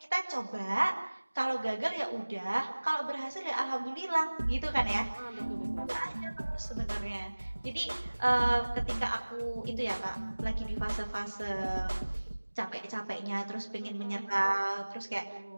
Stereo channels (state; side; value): inverted; both; correlation -1.00